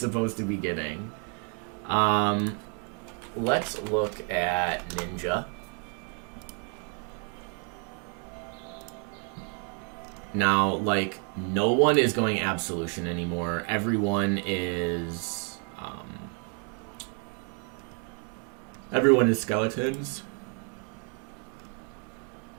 to be getting. Let's look at Ninja. Now, like, no one is going Absolution anymore. Everyone is skeletons.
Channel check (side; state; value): left; quieter; 39.8 dB